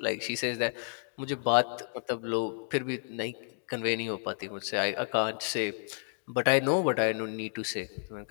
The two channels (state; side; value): silent; right; 57 dB below the other